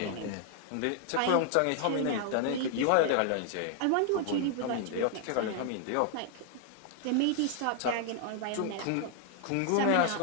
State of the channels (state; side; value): different; both; correlation 0.00